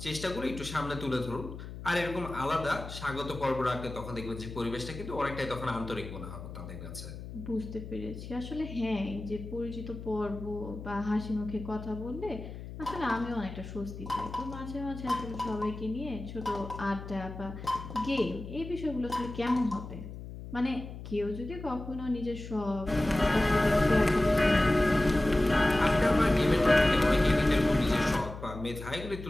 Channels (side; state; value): left; noise; hum, 11 dB below the sound